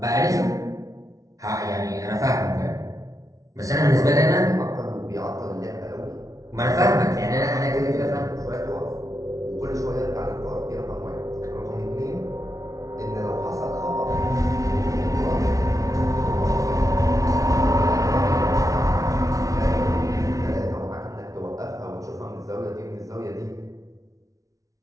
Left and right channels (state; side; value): late; left; 0.17 ms